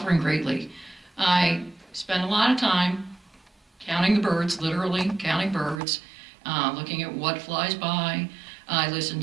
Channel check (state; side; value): drops out; left; at 5.8 s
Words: greatly. I spend a lot of time counting the birds, literally counting birds, looking at what flies by.